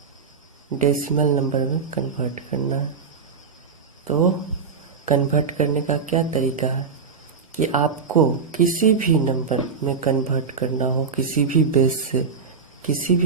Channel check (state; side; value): quieter; left; 5.5 dB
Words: डेसिमल नंबर में कन्वर्ट करना है। तो कन्वर्ट करने का क्या तरीका है कि आपको किसी भी नंबर में कन्वर्ट करना हो, किसी भी